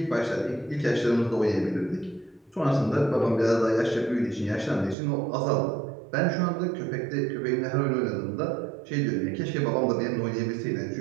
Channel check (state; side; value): drops out; left; at 5.0 s